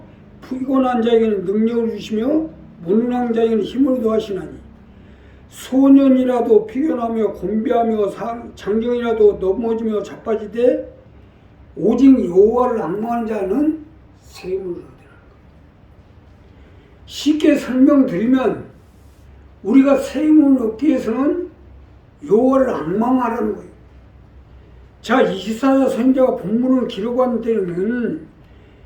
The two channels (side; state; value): both; identical; correlation 1.00